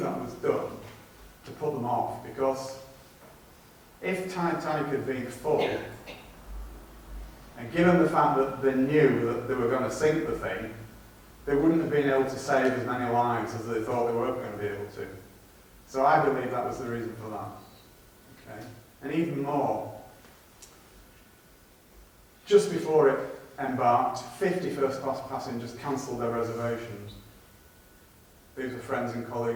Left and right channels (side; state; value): both; identical; correlation 1.00